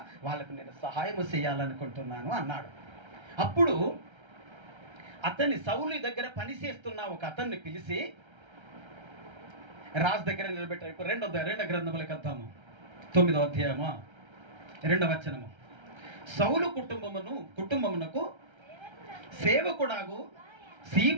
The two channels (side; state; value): left; late; 1.3 ms